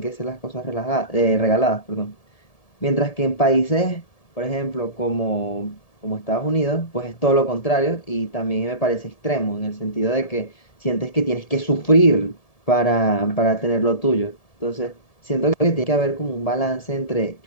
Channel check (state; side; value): late; right; 1.7 ms